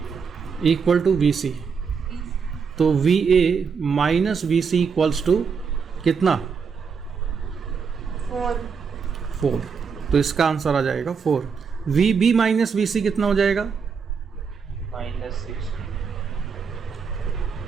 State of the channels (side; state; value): left; quieter; 5.9 dB